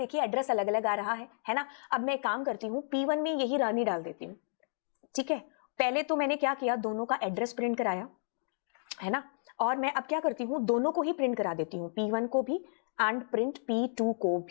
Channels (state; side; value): silent; right; digital silence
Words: एड्रेस अलग अलग आ रहा है ना। अब मैं काम करती हूँ, P1 में यही रानी डाल देती हूँ, ठीक है। पहले तो मैंने क्या किया, दोनों का एड्रेस प्रिंट कराया, है ना। और मैं अब क्या करती हूँ, दोनों को ही प्रिंट करा देती हूँ, P1 को भी एंड प्रिंट P2 को